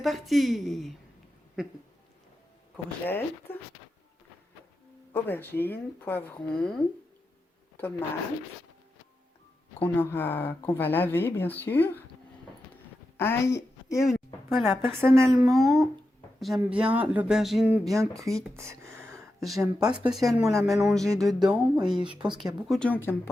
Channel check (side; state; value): both; normal; correlation 0.89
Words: Courgettes, aubergines, poivrons, tomates qu'on va laver bien sûr, ail et oignons. Voilà, personnellement, j'aime bien l'aubergine bien cuite. J'aime pas spécialement la mélanger dedans et je pense qu'il y a beaucoup de gens qui n'aiment